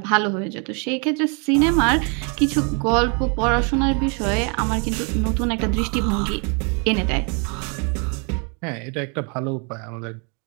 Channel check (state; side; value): quieter; left; 36.2 dB